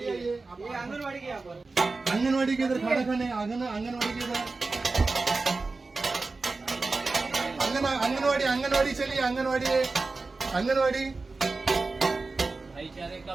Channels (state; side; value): quieter; left; 3.8 dB